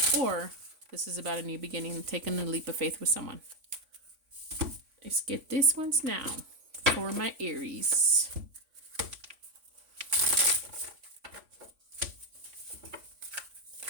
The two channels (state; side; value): late; left; 3.5 ms